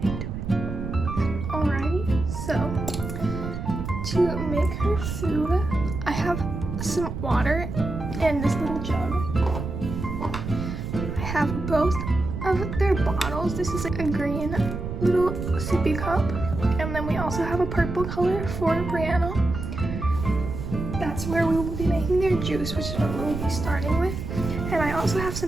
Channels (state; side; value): noise; right; rumble, 6 dB below the sound